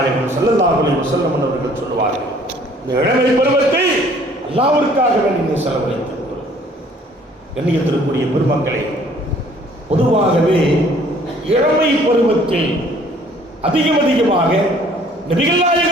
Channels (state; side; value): normal; both; correlation 0.57